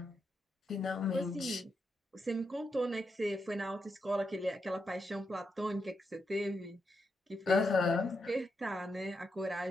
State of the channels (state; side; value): normal; both; correlation 0.84